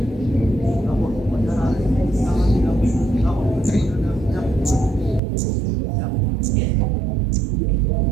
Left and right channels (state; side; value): drops out; left; at 5.2 s